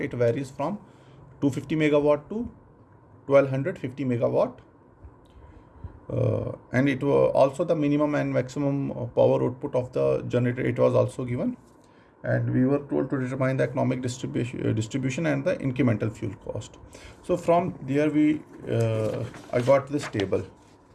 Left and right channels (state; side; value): identical; both; correlation 1.00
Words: it varies from 250 megawatt to 1250 megawatt, and it was also the minimum and maximum power output of the generator. It was also given, and we were told to determine the economic distribution and the incremental fuel cost. So from there I got this table.